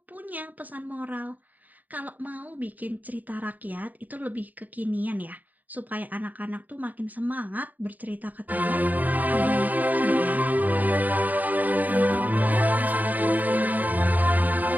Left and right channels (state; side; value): late; left; 0.081 ms